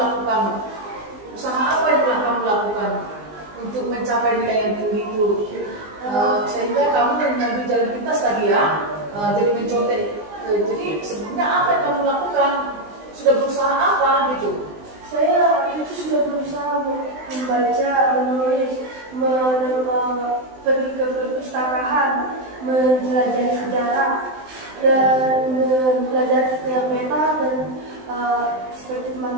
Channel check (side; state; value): left; late; 19 ms